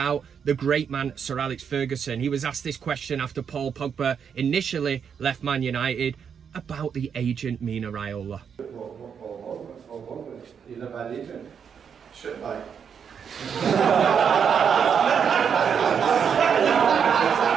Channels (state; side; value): quieter; left; 7.2 dB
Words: The great man Sir Alex Ferguson, he was asked this question after Paul Pogba initially left Man United about the agent Mino Raiola. He's a bad agent. Shit bag.